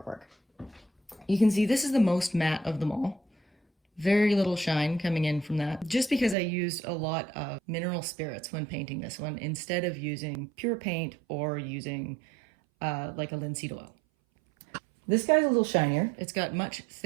You can see this is the most matte of them all. Very little shine coming in from that, just because I used a lot of mineral spirits when painting this one instead of using pure paint or using like a linseed oil. This guy's a little shinier. It's got much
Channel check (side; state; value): left; drops out; at 6.4 s